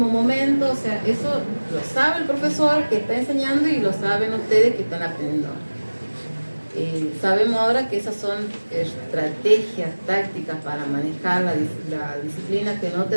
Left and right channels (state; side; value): inverted; both; correlation -1.00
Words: momento. O sea, eso lo sabe el profesor que está enseñando y lo saben ustedes que están aprendiendo. Sabemos ahora que esas son estrategias tácticas para manejar la disciplina que no